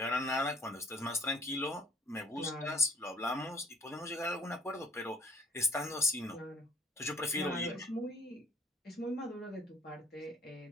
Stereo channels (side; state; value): both; normal; correlation 0.57